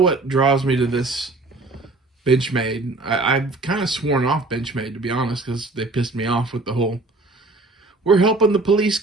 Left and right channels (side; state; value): left; quieter; 3.2 dB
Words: draws me to this Benchmade. I've kind of sworn off Benchmade, to be honest, because they pissed me off with the whole "we're helping the police